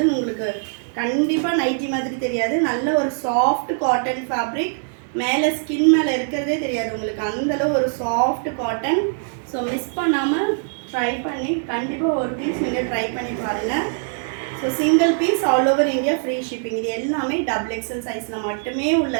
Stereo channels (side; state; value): left; silent; 64 dB below the other